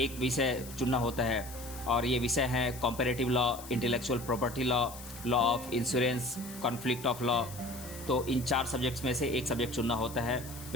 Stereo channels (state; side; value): noise; left; hiss, 15 dB below the sound